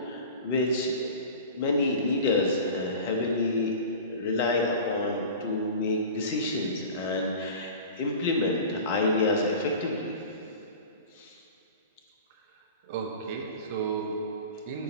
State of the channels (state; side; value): inverted; both; correlation -0.36